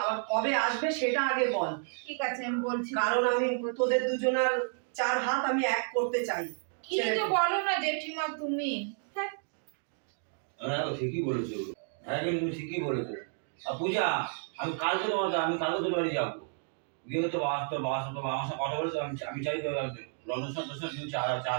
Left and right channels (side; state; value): left; silent; 56 dB below the other